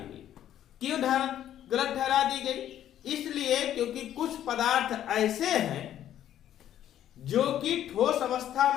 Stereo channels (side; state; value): right; quieter; 11.3 dB